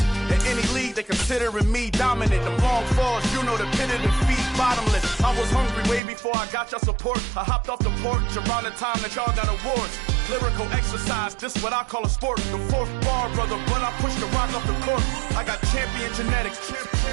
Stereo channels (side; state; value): left; drops out; at 6.0 s